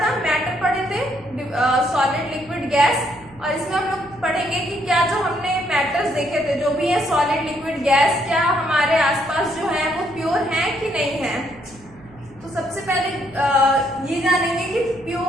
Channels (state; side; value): noise; right; hum, 24 dB below the sound